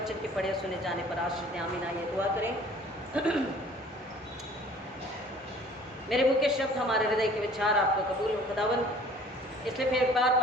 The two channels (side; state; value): both; normal; correlation 0.51